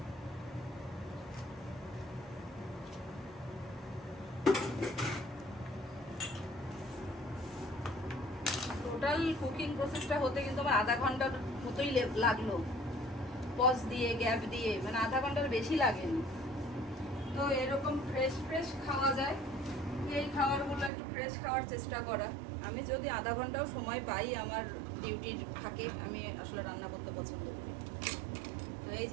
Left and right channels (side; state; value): left; drops out; at 20.9 s